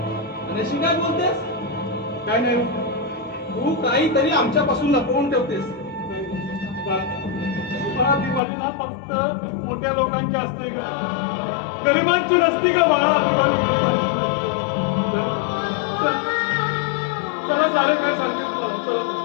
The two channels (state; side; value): drops out; right; at 8.4 s